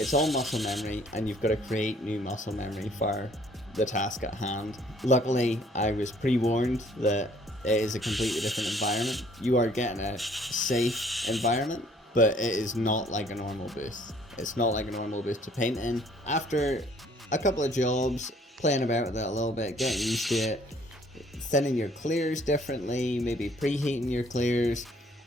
all muscle memory, and you've got to create new muscle memory for the task at hand. Luckily, I was pre-warned that it is a completely different environment. You are getting a safe environment, but it is not like a normal booth. It's not like a normal booth to paint in. After a couple of jobs, playing about with it a little bit, getting used to it, thinning your clears differently, maybe preheating your clears,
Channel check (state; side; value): normal; both; correlation 0.59